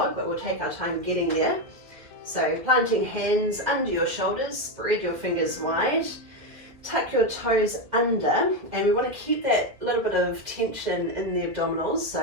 but we'll take our time getting there. So planting hands under your shoulders, spread your fingers wide, tuck your toes under, and we want to keep that little bit of tension in the abdominals,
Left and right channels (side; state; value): left; late; 2.3 ms